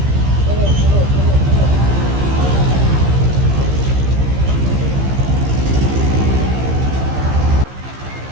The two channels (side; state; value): left; late; 15 ms